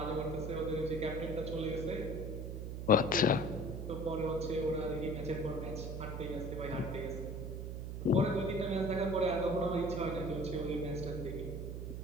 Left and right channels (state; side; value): noise; right; hum, 5 dB below the sound